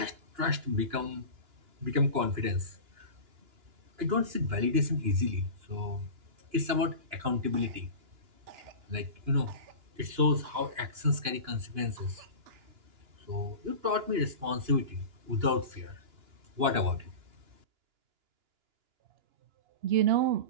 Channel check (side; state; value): left; late; 2.9 ms